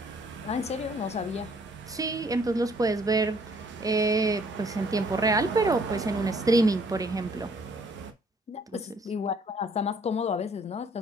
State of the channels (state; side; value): normal; both; correlation 0.62